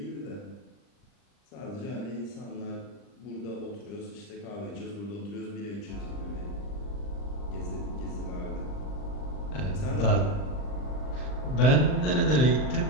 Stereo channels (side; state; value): right; late; 39 ms